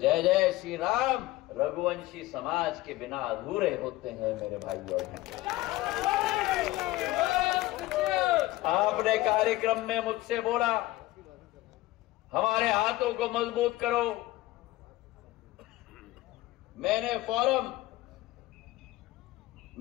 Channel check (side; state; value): right; quieter; 17.7 dB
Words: जय श्री राम रघुवंशी समाज के बिना अधूरे होते हैं मेरे भाई और बहन। आपने कार्यक्रम में मुझसे बोला हमारे हाथों को मजबूत करो। मैंने